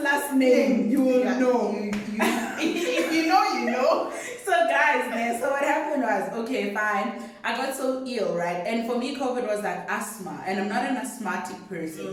name, you will know. If you know, you know. So guys, so what happened was, okay, fine. I got so ill, right? And for me, COVID was like asthma, and I'm not an asthmatic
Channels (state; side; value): identical; both; correlation 1.00